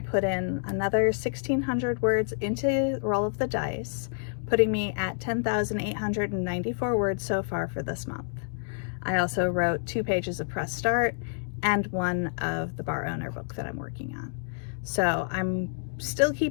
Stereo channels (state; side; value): silent; right; digital silence